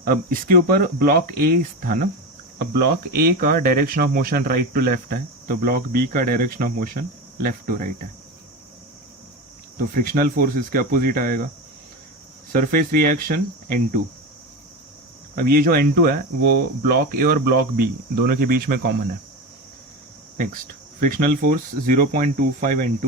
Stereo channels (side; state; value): both; normal; correlation 0.22